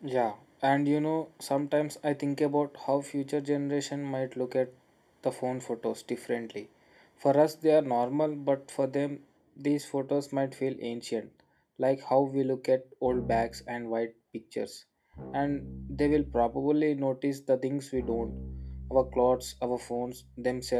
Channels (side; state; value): both; identical; correlation 1.00